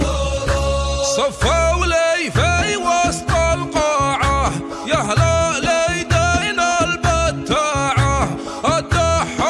صفوا لي في وسط القاعة يا هلا ليدين البتاعة،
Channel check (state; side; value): identical; both; correlation 1.00